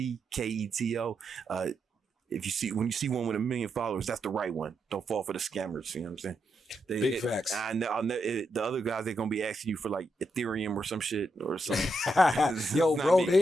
When you see one with 1 million followers, that's the right one. Don't fall for the scammers. You know what I'm saying? Big facts. The other guys, they're gonna be asking you for like Ethereum or some shit or something. Yo, bro, they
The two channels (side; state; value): both; normal; correlation 0.82